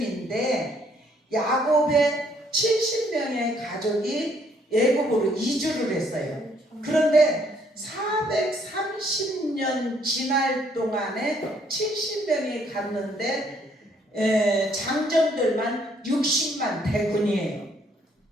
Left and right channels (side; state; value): both; normal; correlation 0.67